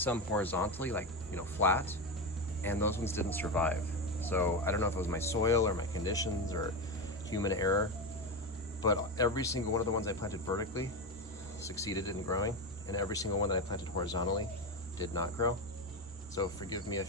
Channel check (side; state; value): both; normal; correlation 0.16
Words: horizontally, like, flat, and those ones didn't survive. So I don't know if it was my soil or my conditions or human error, but every single one of the ones I planted vertically succeeded in growing, and every single one that I planted horizontally did not grow. So forgive me